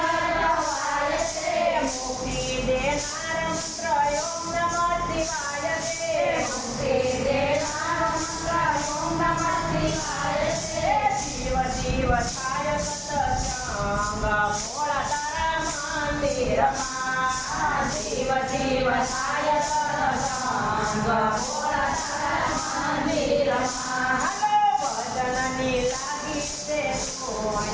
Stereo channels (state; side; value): identical; both; correlation 1.00